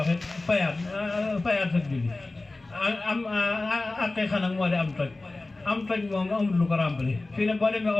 it fayaat sa julli am aqiqa nag moo di am toj moom amul lu ko rempli fii ne boo demee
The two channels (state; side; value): quieter; right; 3.1 dB